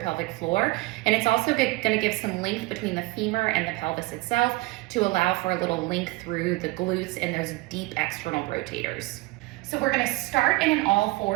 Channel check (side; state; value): left; quieter; 22.0 dB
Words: pelvic floor. And it's also going to give some length between the femur and the pelvis itself to allow for a little length through the glutes and those deep external rotators. So we're going to start in an all